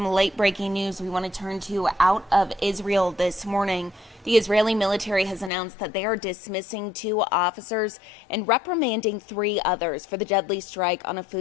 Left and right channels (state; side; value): drops out; right; at 5.5 s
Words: late breaking news we want to turn to out of Israel this morning. The Israeli military has announced that they are dismissing 2 officers and reprimanding 3 others for the deadly strike on a